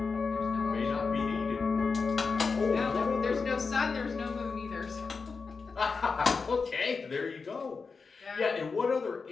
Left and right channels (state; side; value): quieter; right; 4.8 dB